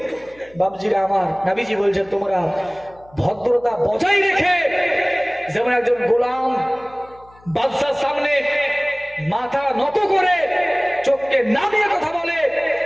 বাপজিরা আমার, নবীজি বলছেন তোমরা ভদ্রতা বজায় রেখে, যেমন একজন গোলাম বাদশার সামনে মাথা নত করে চোখকে নামিয়ে কথা বলে,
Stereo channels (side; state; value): left; noise; hum, 27 dB below the sound